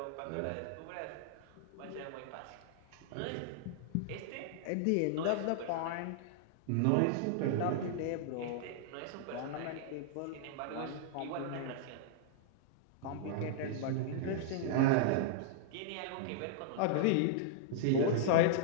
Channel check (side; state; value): both; different; correlation -0.01